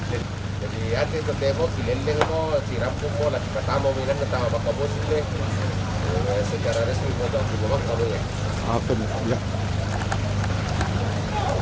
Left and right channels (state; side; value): identical; both; correlation 1.00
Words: jadi ate to demo pileleng mo siram mo lagi pertama minan ketama baka bos ini secara resmi mo to di bawah kamu ya Apa nih? Ya.